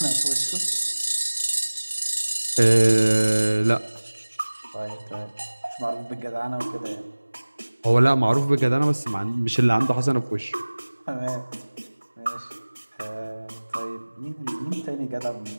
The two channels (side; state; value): both; inverted; correlation -1.00